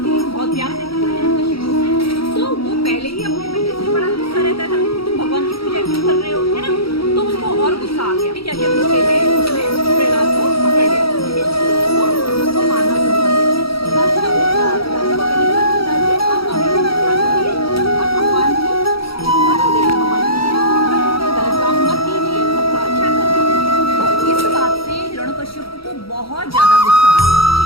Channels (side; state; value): right; late; 0.75 ms